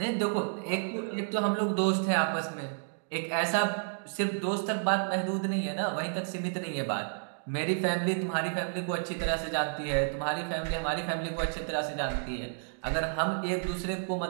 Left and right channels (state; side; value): silent; left; digital silence